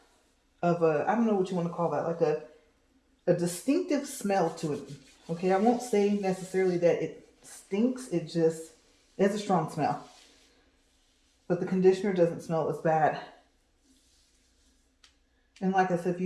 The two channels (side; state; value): both; identical; correlation 1.00